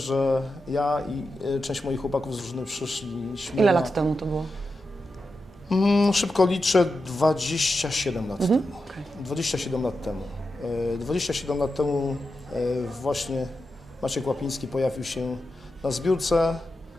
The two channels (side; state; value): both; normal; correlation 0.89